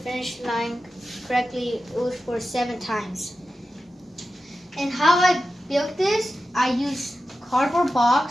line correctly, it was for 7 times. And how I built this, I used cardboard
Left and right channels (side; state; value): both; normal; correlation 0.92